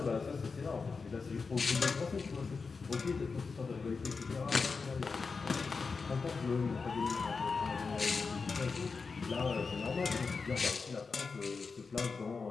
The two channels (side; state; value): right; quieter; 4.7 dB